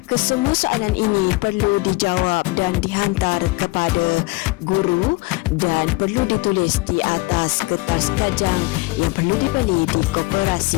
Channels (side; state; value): right; quieter; 23.1 dB